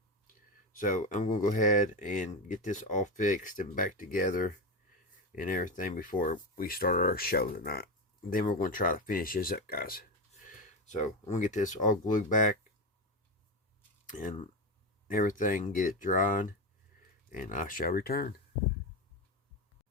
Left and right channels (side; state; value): both; normal; correlation 0.16